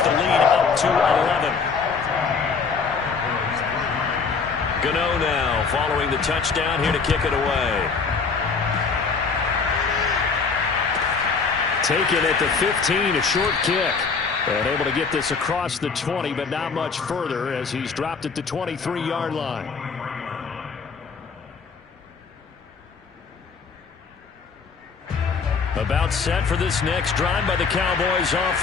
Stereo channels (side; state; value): right; quieter; 5.2 dB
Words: the lead up to 11. Gano now following the touchdown here to kick it away. Taken at the 15, a short kick. And able to get this across the 20, but not much further as he's dropped it to 23-yard line. About set for this next drive by the Cowboys